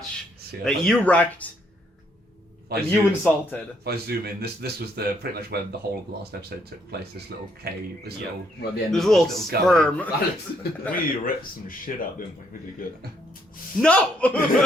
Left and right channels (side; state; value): both; normal; correlation 0.71